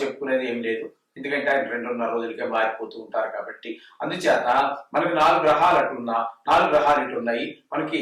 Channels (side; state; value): both; identical; correlation 1.00